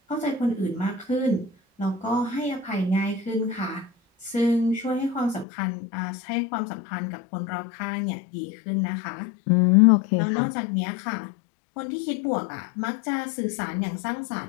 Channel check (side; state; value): right; drops out; at 5.5 s